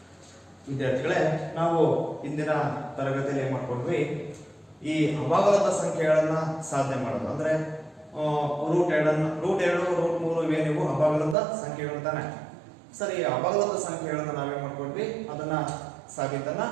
ವಿದ್ಯಾರ್ಥಿಗಳೇ, ನಾವು ಇಂದಿನ ತರಗತಿಯಲ್ಲಿ ಏನು ಮಾಡ್ಕೊಂಡ್ವಿ, ಈ ಅಭಾಗಲಬ್ಧ ಸಂಖ್ಯೆಗಳನ್ನ ಸಾಧನೆ ಮಾಡೋದು ಅಂದ್ರೆ √2 √3 ಇವೇನಿವು ಅಭಾಗಲಬ್ಧ ಸಂಖ್ಯೆಗಳು ತಾನೆ. ಸರಿ, ಅಭಾಗಲಬ್ಧ ಸಂಖ್ಯೆಗಳನ್ನ ನಾವೇನ್ ಮಾಡ್ಕೊಂಡ್ವಿ, ಅದನ್ನ ಸಾಬೀತನ್ನ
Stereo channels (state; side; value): drops out; left; at 11.4 s